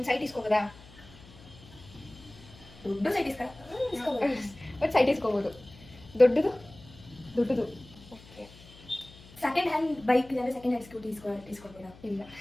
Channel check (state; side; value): noise; left; hum, 21 dB below the sound